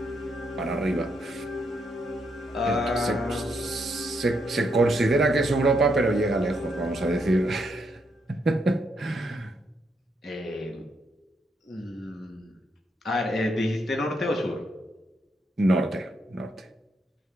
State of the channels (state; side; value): normal; both; correlation 0.78